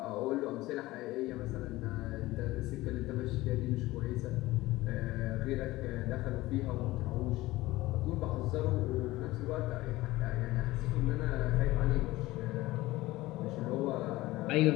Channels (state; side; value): quieter; right; 18.5 dB